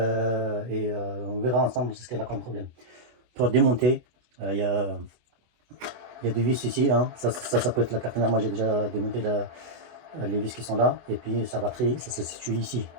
verra ensemble ce qu'elle a comme problème. Pour démonter, il y a des vis ici, hein. Ça peut être la carte mère. Moi, j'ai déjà démonté les vis qui sont là. Et puis, sa batterie, ça se situe ici.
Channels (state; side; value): late; left; 24 ms